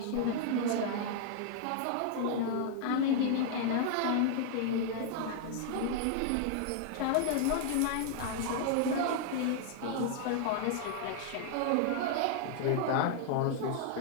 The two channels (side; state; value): both; different; correlation 0.00